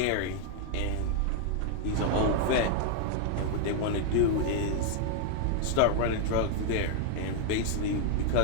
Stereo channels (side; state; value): both; different; correlation 0.00